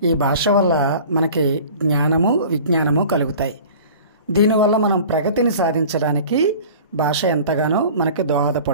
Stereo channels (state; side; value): inverted; both; correlation -0.43